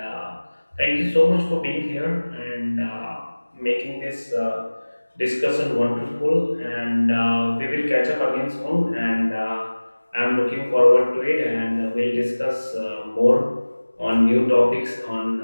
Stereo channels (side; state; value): both; inverted; correlation -1.00